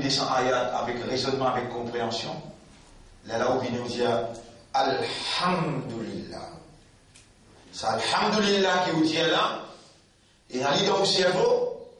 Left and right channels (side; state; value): both; identical; correlation 1.00